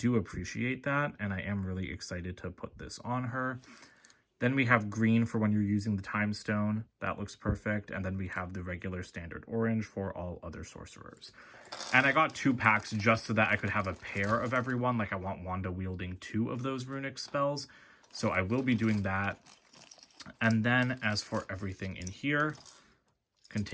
appreciate that, and I am really excited to put this on her. Then we have green for when you're using the Time Stone. That looks perfect. And then we have the regular standard orange for all other sorcerers. And I got 2 packs just so that I could have a pair of everyone. Like I want Wanda wielding 2 of those runic spells. So I will be doing that. And then as for everything in here,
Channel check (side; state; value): both; identical; correlation 1.00